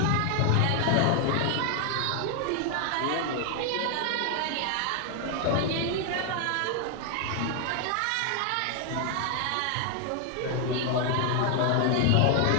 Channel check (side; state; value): both; different; correlation 0.00